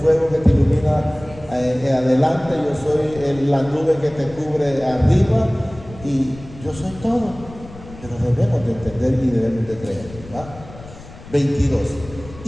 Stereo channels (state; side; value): noise; left; rumble, 17 dB below the sound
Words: que te ilumina adelante, yo soy la nube que te cubre arriba y yo soy todo. Pero debemos de entender y debemos de creer, ¿verdad? 22.